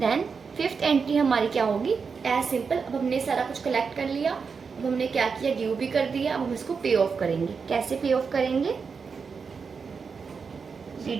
फिफ्थ एंट्री हमारी क्या होगी, एज सिंपल, अब हमने सारा कुछ कलेक्ट कर लिया, अब हमने क्या किया, ड्यू भी कर दिया, अब हम इसको पे ऑफ करेंगे। कैसे पे ऑफ करेंगे,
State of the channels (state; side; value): quieter; left; 5.5 dB